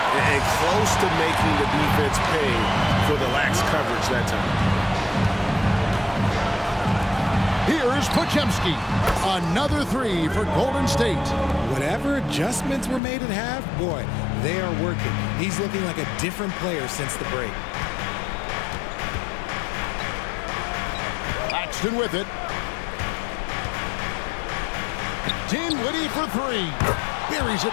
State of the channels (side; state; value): right; drops out; at 13.0 s